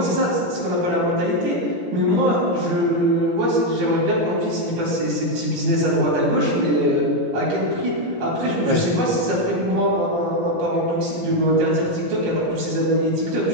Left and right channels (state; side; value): late; left; 17 ms